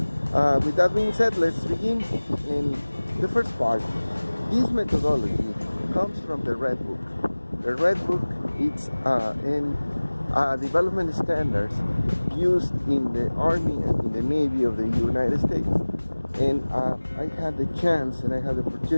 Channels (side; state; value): both; inverted; correlation -1.00